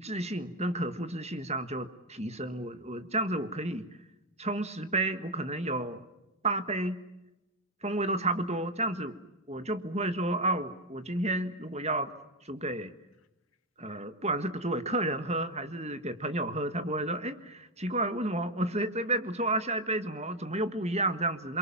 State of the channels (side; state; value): both; normal; correlation 0.09